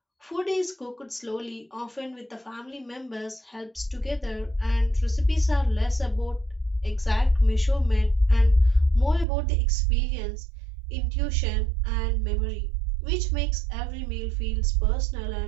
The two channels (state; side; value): drops out; left; at 9.2 s